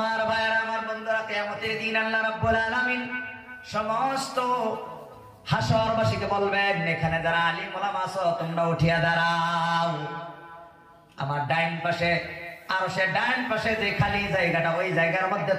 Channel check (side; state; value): both; identical; correlation 1.00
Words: ভাইরা, আমার বন্ধুরা, কিয়ামতের দিন আল্লাহ রাব্বুল আলামিন সমস্ত হাশরবাসীকে বলবেন এখানে যারা আলিম ওলামা আছো তোমরা উঠিয়া দাঁড়াও। আমার ডাইন পাশে আর সে ডাইন পাশে যে খালি জায়গাটা ওই জায়গার মধ্যে